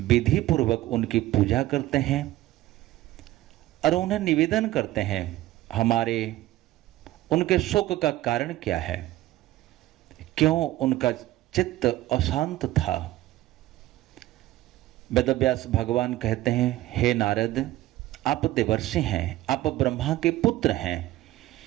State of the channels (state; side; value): quieter; left; 16.0 dB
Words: विधि पूर्वक उनकी पूजा करते हैं और उन्हें निवेदन करते हैं हमारे उनके शोक का कारण क्या है, क्यों उनका चित्त अशांत था। वेदव्यास भगवान कहते हैं, हे नारद, आप देवर्षि हैं, आप ब्रह्मा के पुत्र हैं,